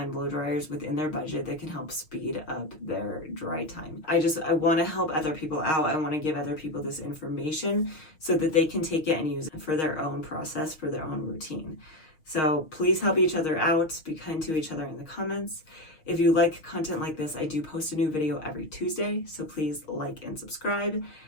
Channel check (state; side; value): late; right; 6.3 ms